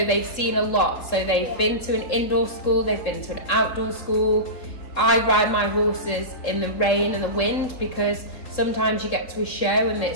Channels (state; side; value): late; right; 3.7 ms